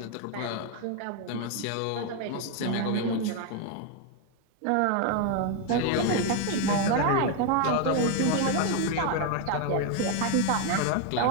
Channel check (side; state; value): both; different; correlation 0.01